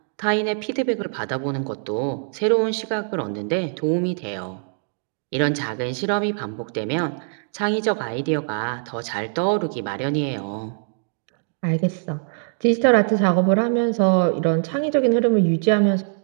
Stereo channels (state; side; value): silent; left; 61 dB below the other